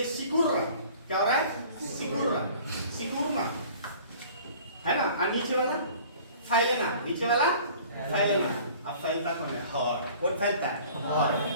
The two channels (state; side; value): inverted; both; correlation -0.48